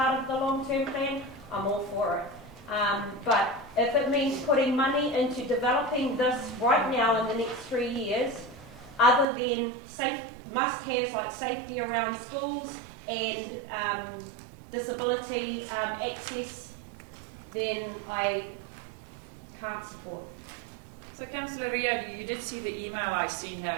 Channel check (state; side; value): drops out; left; at 9.2 s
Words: of the long-term plan, I'm all for it. But if it means putting money into developing this right now in the next 3 years, other than must-haves like safety around schools and disability access, then I can't support. So Councillor Rio, you did see the email I sent out